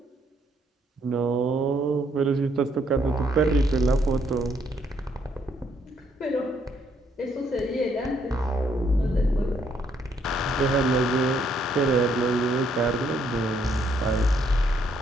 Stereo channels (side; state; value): both; normal; correlation 0.70